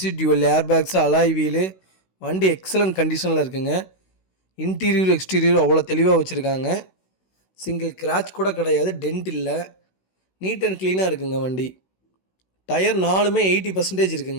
டியூவல் ஏர்பேக்ஸு, அலாய் வீலு, வண்டி எக்ஸலண்ட் கண்டிஷனில் இருக்குங்க. இன்டீரியர் எக்ஸ்டீரியர் அவ்வளோ தெளிவாக வச்சுருக்காங்க. சிங்கிள் கிராச் கூட கிடையாது, டென்ட் இல்லை, நீட் அண்ட் க்ளீனாக இருக்குங்க வண்டி. டயர் 4மே 80%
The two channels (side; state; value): right; late; 16 ms